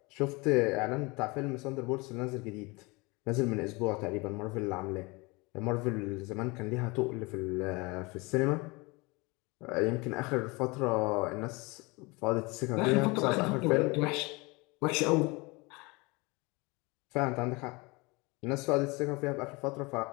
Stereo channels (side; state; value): right; quieter; 25.9 dB